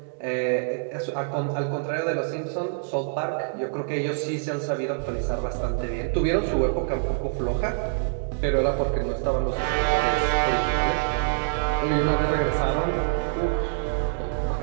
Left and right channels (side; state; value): left; silent; digital silence